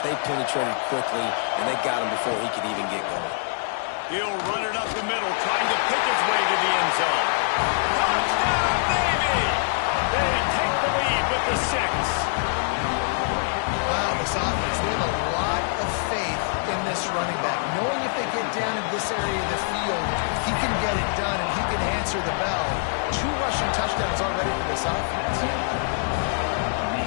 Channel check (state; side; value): silent; right; digital silence